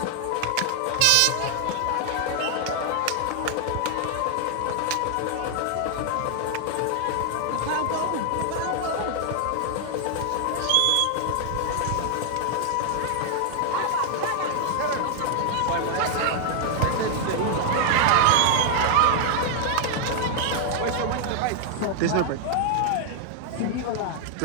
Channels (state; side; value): different; both; correlation 0.00